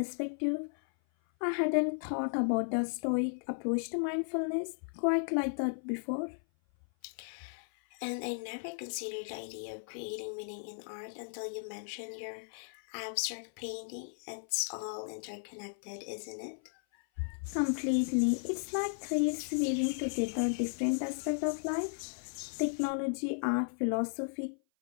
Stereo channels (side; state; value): right; silent; 54 dB below the other